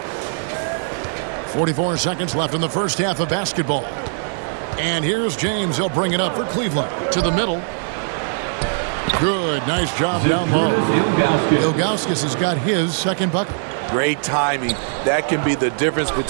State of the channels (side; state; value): left; silent; digital silence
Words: 44 seconds left in the first half of basketball. And here's James. He'll bring it up for Cleveland. To the middle. Good. Nice job down low. Ilgauskas has got his 2nd bucket. Great timing. That can be the difference